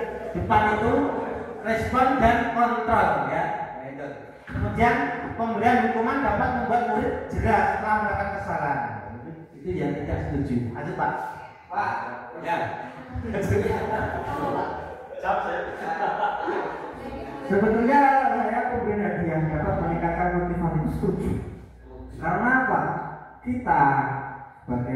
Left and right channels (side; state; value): both; identical; correlation 1.00